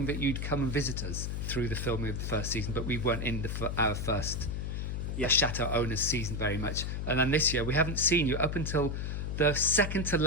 that you'd come and visit us through the filming of the first season, but we weren't in our first Chateau owners season very much. And then this year we haven't seen you up until the second to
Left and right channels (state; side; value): noise; left; hum, 3 dB below the sound